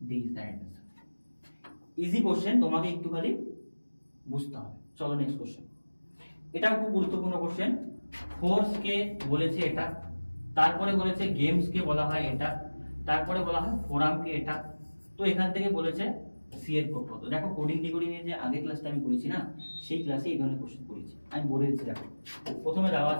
D is the right answer. Easy question, তোমাকে একটু খালি বুঝতে হবে। চলো নেক্সট কোশ্চেন। এটাও খুব গুরুত্বপূর্ণ কোশ্চেন। ফোর্স কে বলেছে এটা, তারপরে বলেছে গেমস কে বলা হয় এটা, তারপরে বলা হয় ফোরাম কে এটা। তো এখান থেকে বলেছে সি এর কোড কত। দেখো কোডিং ডিকোডিং এর যে আগের ক্লাসটা আমি করেছি না, সেই ক্লাসে এই ধরনের কোশ্চেন করেছি, আমি বলে দিচ্ছি। দেখো প্রথমে দেওয়া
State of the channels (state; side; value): inverted; both; correlation -1.00